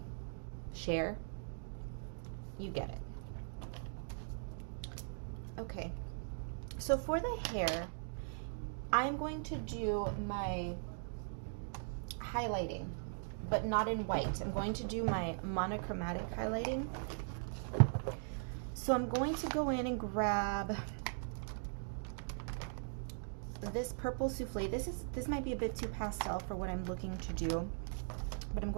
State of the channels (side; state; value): left; silent; digital silence